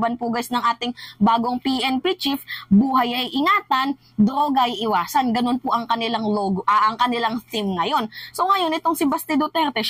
po guys ng ating bagong PNP chief, buhay ay ingatan, droga ay iwasan. Ganun po ang kanilang logo, ang kanilang theme ngayon. So ngayon itong si Baste Duterte,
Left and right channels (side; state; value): both; identical; correlation 1.00